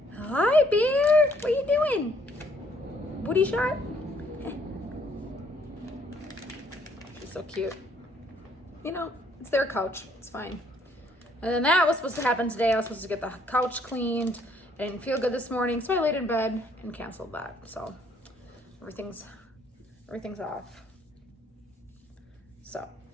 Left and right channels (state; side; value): normal; both; correlation 0.65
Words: Hi, bear. What are you doing? Booty shot? She's so cute. You know, it's their couch. It's fine. And then that was supposed to happen today. I was supposed to get the couch cleaned. I didn't feel good this morning, so I laid in bed and canceled that. So everything's off. So